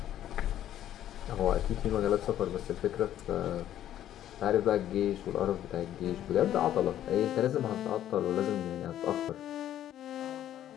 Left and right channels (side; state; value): right; quieter; 11.7 dB